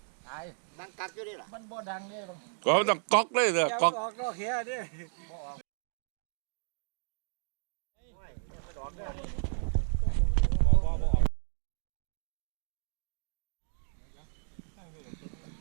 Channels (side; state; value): left; silent; digital silence